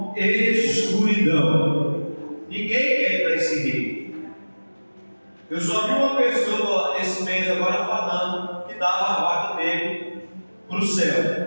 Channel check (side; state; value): both; inverted; correlation -1.00